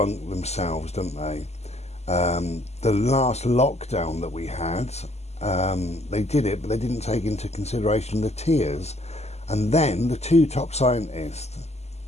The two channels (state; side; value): late; right; 0.31 ms